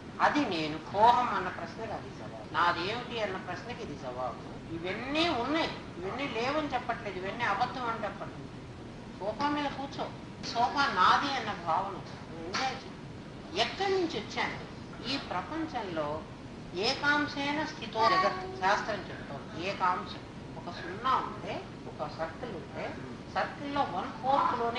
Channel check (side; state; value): both; identical; correlation 1.00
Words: అది నేను కోహం అన్న ప్రశ్నకి అది జవాబు నాదేమిటి అన్న ప్రశ్నకి ఇది జవాబు ఇవన్నీ ఉన్నాయి ఇవన్నీ లేవని చెప్పట్లేదు ఇవన్నీ అబద్ధం అని చెప్పట్లేదు సోఫా మీద కూర్చో సోఫా నాది అన్న భావన ఎంజాయ్ చేయి ఎక్కడి నుంచి వచ్చాను ఈ ప్రపంచంలో ఏకాంశైన స్థితో జగత్ శాస్త్రం చెప్తోంది ఏకాంశం ఒక సున్నా ఉంటే ఒక సర్కిల్ ఉంటే సర్కిల్లో